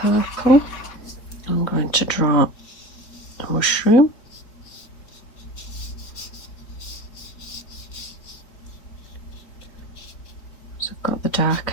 I'm going to draw a mushroom. Got the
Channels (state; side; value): late; right; 4.0 ms